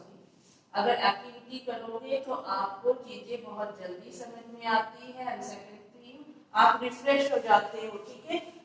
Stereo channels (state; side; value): identical; both; correlation 1.00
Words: अगर एक्टिविटी करोगे तो आपको चीजें बहुत जल्दी समझ में आती है एंड सेकंड थिंग आप रिफ्रेश हो जाते हो। ठीक है,